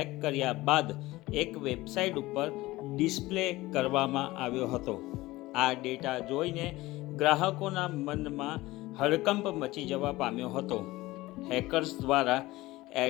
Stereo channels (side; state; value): right; quieter; 18.9 dB